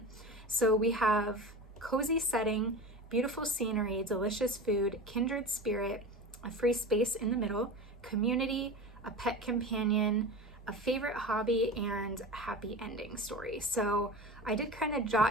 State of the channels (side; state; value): both; normal; correlation 0.30